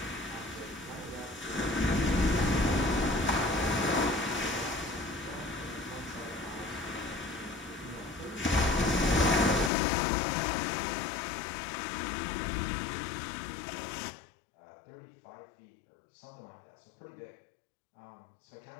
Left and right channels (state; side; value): drops out; right; at 9.7 s